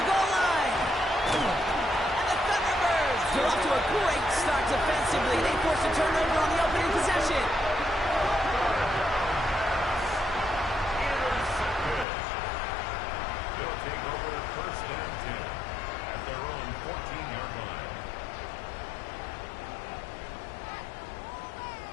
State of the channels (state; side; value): drops out; right; at 12.1 s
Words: goal line! And the Thunderbirds are off to a great start defensively. They forced a turnover on the opening possession. They'll take over 1st and 10 at their own 14-yard line.